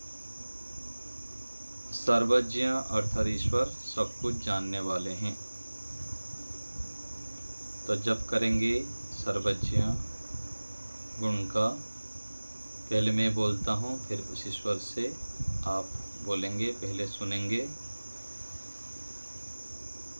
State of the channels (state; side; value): inverted; both; correlation -1.00